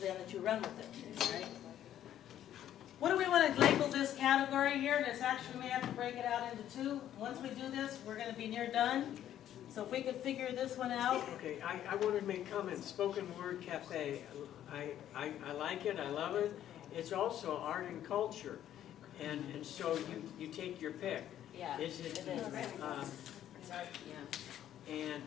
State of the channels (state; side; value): quieter; right; 11.4 dB